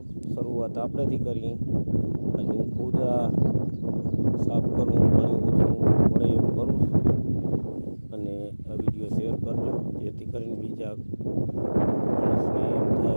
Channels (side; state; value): both; inverted; correlation -1.00